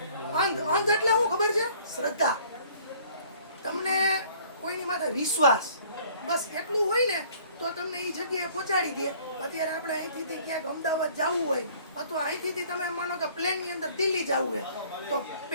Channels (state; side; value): inverted; both; correlation -0.55